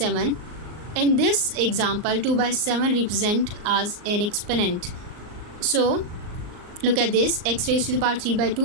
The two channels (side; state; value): left; late; 38 ms